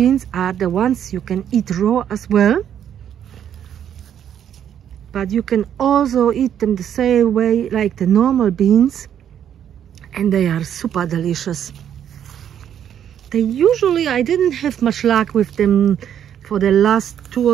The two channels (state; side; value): quieter; left; 9.5 dB